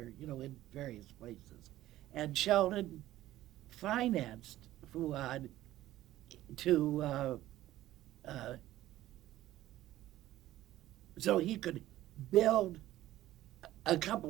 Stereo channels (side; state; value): left; quieter; 14.7 dB